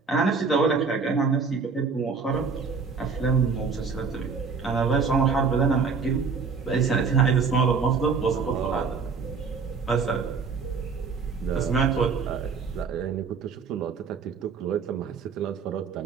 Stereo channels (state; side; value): quieter; left; 5.2 dB